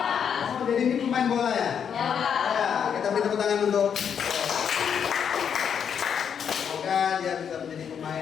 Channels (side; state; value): right; quieter; 7.7 dB